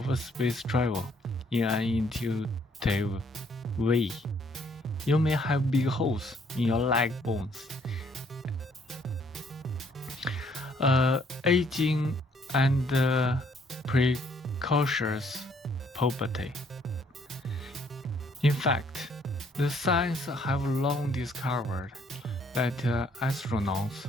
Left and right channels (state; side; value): normal; both; correlation 0.65